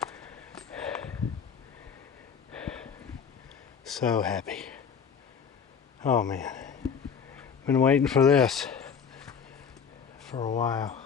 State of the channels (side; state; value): right; quieter; 6.8 dB